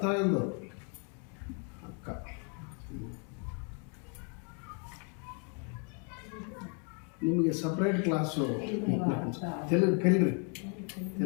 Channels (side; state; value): right; quieter; 39.8 dB